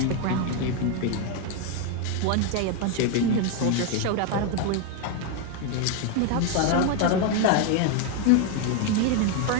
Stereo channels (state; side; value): different; both; correlation 0.01